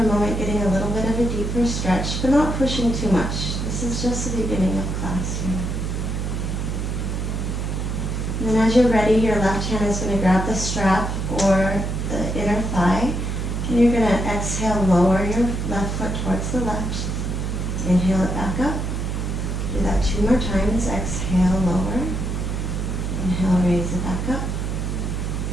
moment, getting a little bit of a deeper stretch, but not pushing too much. This is just the beginning of class here. And then as you're ready, your left hand is going to grab the strap or the inner thigh, and you're going to exhale, lower your left foot towards the left. Inhale it back up. Do that 2 more times. Exhale, lower. Inhale, raise it back up.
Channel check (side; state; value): right; noise; hum, 2 dB below the sound